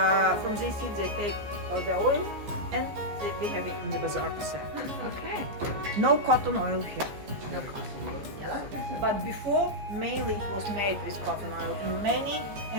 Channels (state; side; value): late; left; 14 ms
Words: from these seeds they take the oil, and we have it in the bazaar to sell. Okay. No cotton oil here. No cotton. But before, mainly it was made with cotton oil. In many